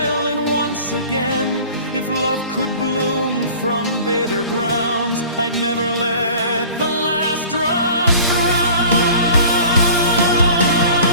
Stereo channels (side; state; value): both; inverted; correlation -0.44